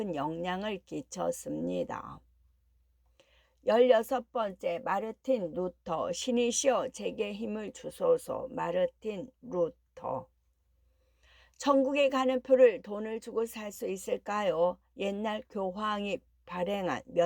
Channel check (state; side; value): identical; both; correlation 1.00